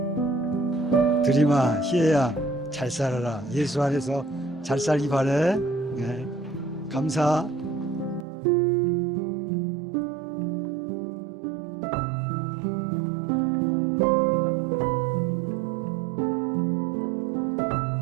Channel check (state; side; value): drops out; left; at 8.2 s